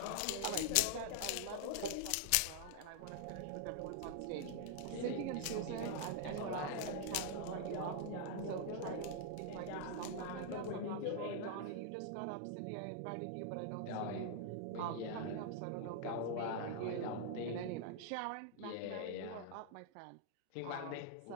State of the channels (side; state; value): both; different; correlation 0.00